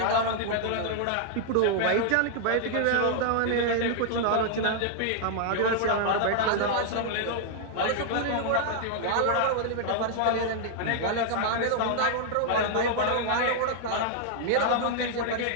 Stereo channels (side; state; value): both; different; correlation -0.01